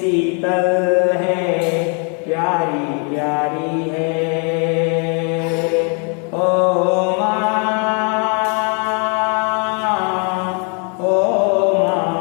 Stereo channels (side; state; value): right; quieter; 37.8 dB